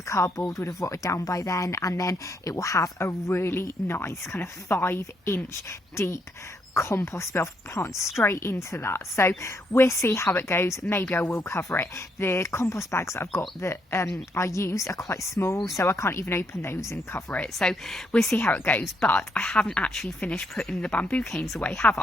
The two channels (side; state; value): both; normal; correlation 0.75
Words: cardboard would have rotted down by then, and then it will have a really nice kind of 5-inch deep compost bin. I'll plant straight into that. So we'll see how it goes. Maybe I will cover it. The compost bags that I've got that I used are quite small, so I can't even open those and cover it. So we'll see how it goes. But I haven't actually finished putting the bamboo canes away, have